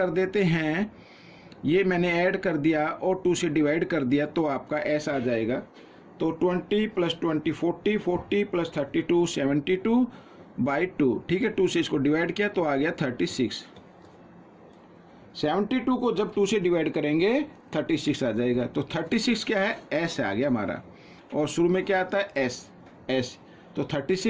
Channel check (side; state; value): both; identical; correlation 1.00